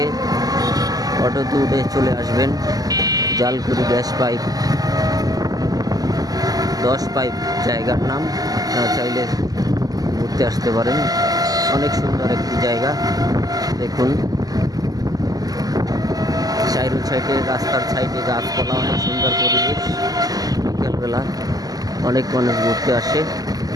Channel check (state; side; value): late; left; 0.18 ms